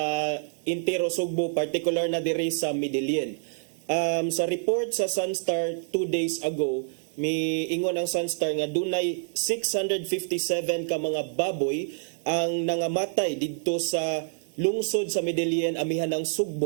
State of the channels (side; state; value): left; silent; digital silence